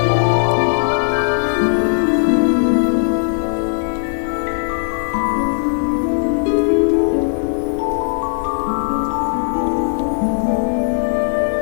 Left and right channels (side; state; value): right; silent; 68 dB below the other